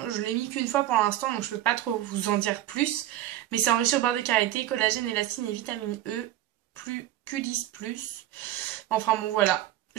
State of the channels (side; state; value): left; quieter; 13.4 dB